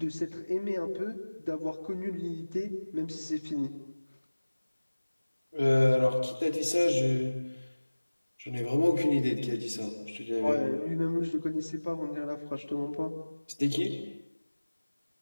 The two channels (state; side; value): inverted; both; correlation -1.00